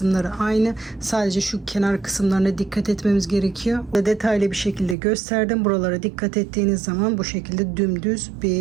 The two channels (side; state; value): left; drops out; at 5.0 s